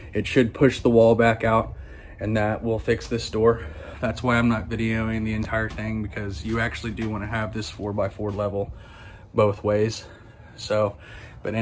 it should push the wall back out, and that will fix this door. That's why I'm not videoing the entire thing, because you actually do want to have this 4x4 level both ways. So, but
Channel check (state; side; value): identical; both; correlation 1.00